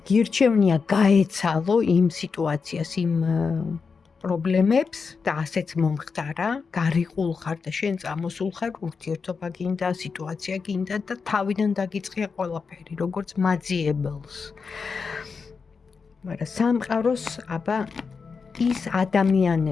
გირჩევნია გაეცალო იმ სიტუაციას, იმ პრობლემებს და ასეც მომხდარა, გარიყულ ხარ და შენ წამოსულ ხარ, ურთიერთობა გინდა, სიტუაცია გინდა და თავიდან დაგიწყია ყველაფერი, როგორც მაძიებელს. მაგრამ სამყაროს აბა ის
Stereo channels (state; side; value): quieter; right; 5.2 dB